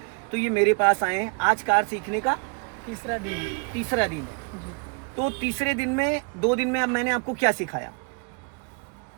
तो ये मेरे पास आए हैं। आज कार सीखने का तीसरा दिन। जी। तो तीसरे दिन में 2 दिन में अब मैंने आपको क्या सिखाया?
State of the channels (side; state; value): left; quieter; 35.2 dB